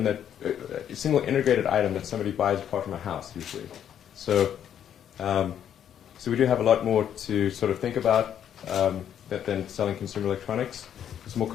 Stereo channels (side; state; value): right; quieter; 9.5 dB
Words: integrated item that somebody buys apart from a house usually. So we do have a lot more to sort of think about than selling consumer electronics. It's a more